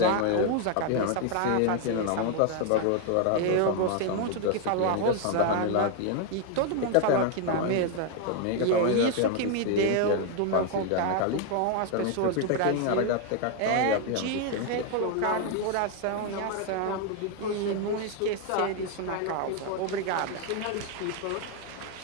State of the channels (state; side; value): different; both; correlation 0.01